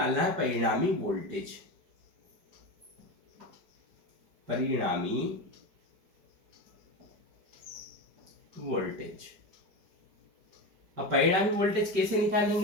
है परिणामी वोल्टेज। परिणामी वोल्टेज। अब परिणामी वोल्टेज कैसे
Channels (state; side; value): late; left; 5.0 ms